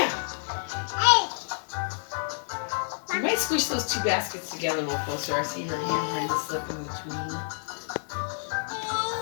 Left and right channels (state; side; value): silent; right; 55 dB below the other